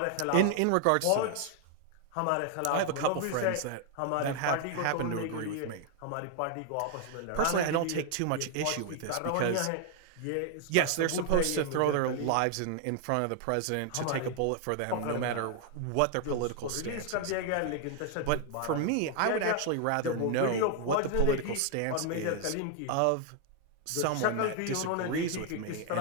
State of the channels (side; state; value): both; different; correlation 0.00